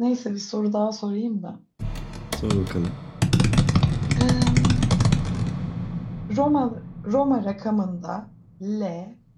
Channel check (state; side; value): identical; both; correlation 1.00